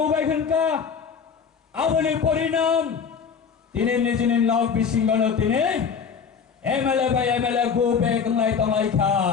আবনি পরিণাম তিনি নিজের নক বিসিঙ্গন তিনি এমএলএ বাই এমএলএ গৌবে গলাই তংলাইখা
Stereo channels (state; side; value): quieter; right; 6.4 dB